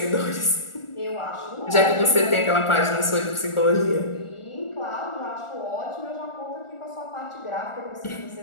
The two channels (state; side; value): late; right; 1.4 ms